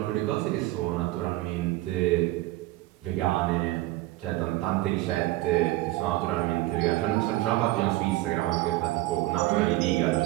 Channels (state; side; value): quieter; left; 17.9 dB